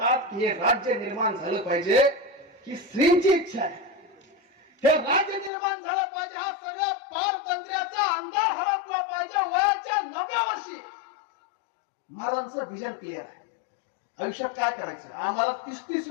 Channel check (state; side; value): drops out; right; at 5.5 s